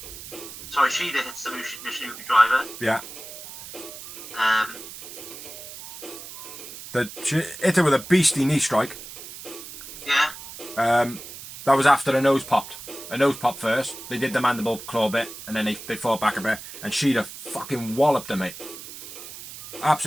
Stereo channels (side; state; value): right; noise; hiss, 13 dB below the sound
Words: Sorry, Shida hits the Mission Yuki Driver. Yeah. She hit her with a beastly knee strike. Yeah. That was after her nose popped. Her nose popped first. They did the mandible claw bit, and then they fought back a bit. And Shida fucking walloped her, mate.